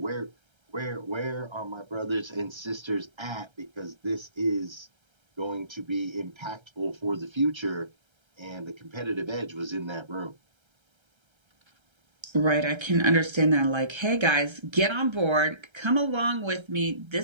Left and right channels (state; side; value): late; left; 1.3 ms